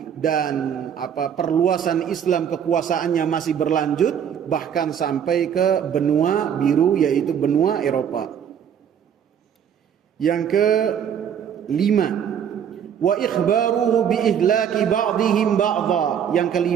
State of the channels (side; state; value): left; quieter; 8.5 dB